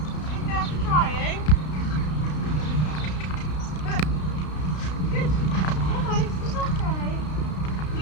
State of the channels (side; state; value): right; late; 33 ms